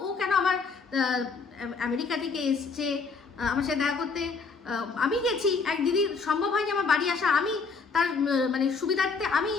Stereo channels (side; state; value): right; quieter; 4.7 dB